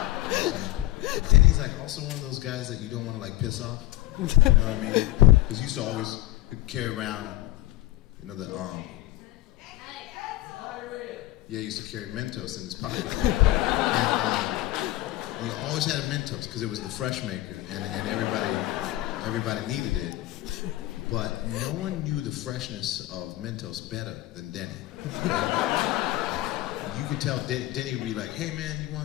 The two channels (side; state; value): right; quieter; 17.0 dB